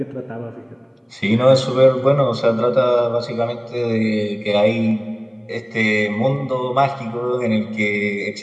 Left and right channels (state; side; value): identical; both; correlation 1.00